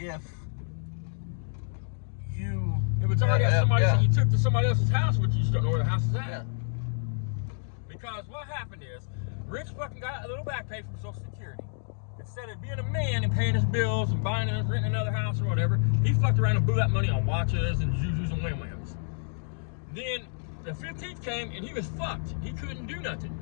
you... It was already at somebody, so you took to somebody else's house, but you just don't know where the house is at. Yeah. Because what happened is, Rich fucking got a little back pay from Social Security. Instead of being a man and paying his bills and buying and renting another house or whatever, he fucked around and blew that money on watches and jujus and wham-whams. Then the 15th came and he was fucked. He couldn't do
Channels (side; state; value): right; silent; digital silence